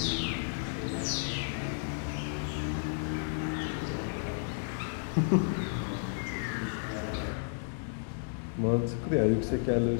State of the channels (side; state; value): right; silent; digital silence